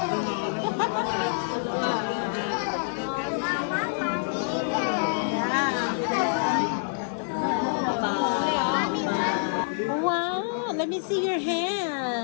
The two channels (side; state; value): right; silent; 60 dB below the other